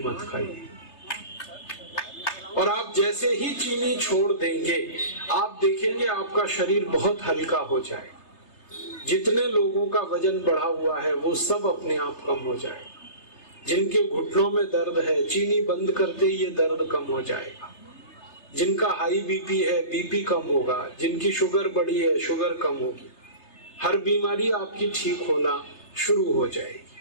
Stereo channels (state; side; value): late; right; 3.3 ms